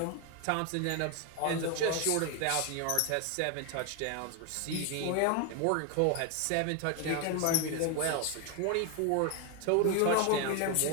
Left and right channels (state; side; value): different; both; correlation 0.01